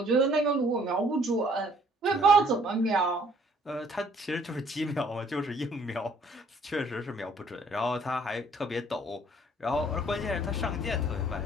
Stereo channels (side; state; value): both; normal; correlation 0.60